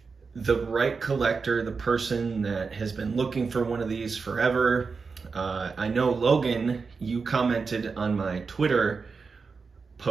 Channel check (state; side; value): quieter; left; 4.9 dB